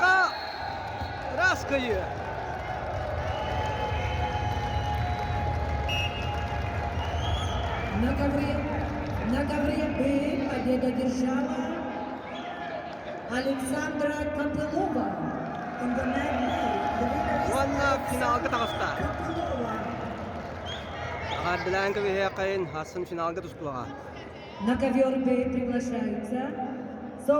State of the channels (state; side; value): identical; both; correlation 1.00